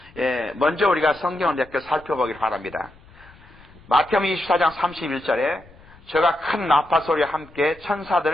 먼저 우리가 성경을 몇 개 살펴보길 바랍니다. 마태복음 24장 31절에 저가 큰 나파 소리와 함께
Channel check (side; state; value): left; noise; rumble, 24 dB below the sound